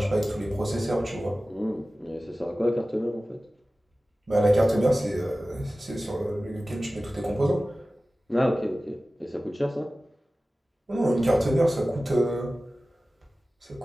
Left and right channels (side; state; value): both; normal; correlation 0.96